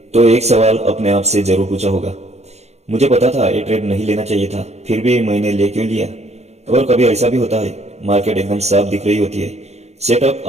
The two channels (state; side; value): late; left; 0.31 ms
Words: तो एक सवाल अपने आप से जरूर पूछा होगा। मुझे पता था ये ट्रेड नहीं लेना चाहिए था, फिर भी मैंने ले क्यों लिया। और कभी ऐसा भी होता है, मार्केट एकदम साफ दिख रही होती है, सेटअप